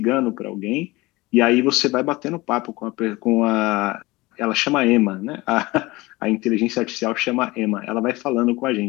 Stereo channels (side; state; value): right; quieter; 21.2 dB